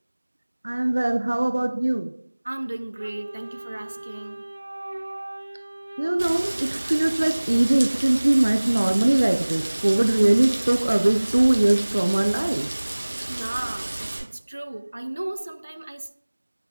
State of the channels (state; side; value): inverted; both; correlation -1.00